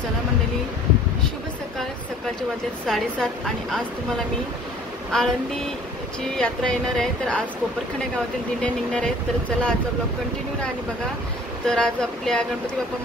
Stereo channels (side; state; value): both; normal; correlation 0.51